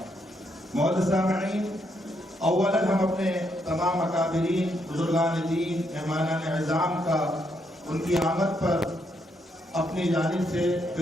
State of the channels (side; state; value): both; normal; correlation 0.77